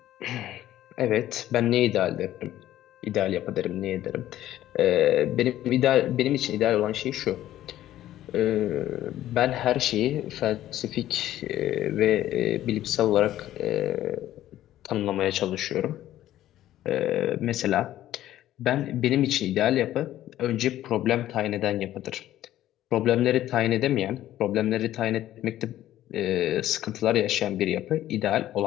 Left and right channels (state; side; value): quieter; right; 13.3 dB